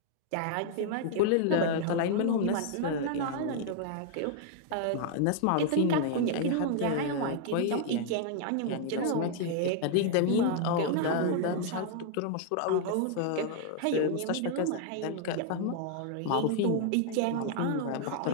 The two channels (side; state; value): both; different; correlation 0.00